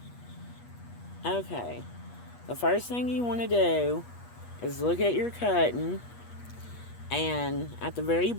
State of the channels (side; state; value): right; late; 8.3 ms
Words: Okay, the first thing you want to do is look at your cutting, and at the very